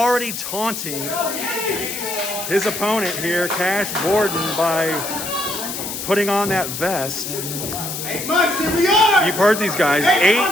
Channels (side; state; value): left; noise; hiss, 6 dB below the sound